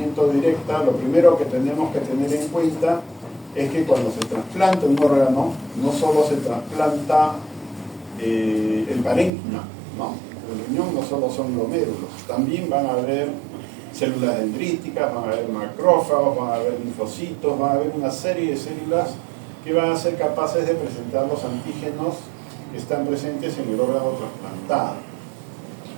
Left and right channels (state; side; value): drops out; left; at 9.3 s